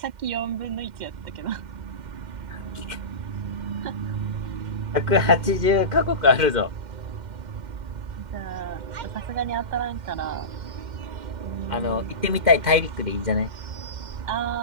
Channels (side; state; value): left; late; 2.1 ms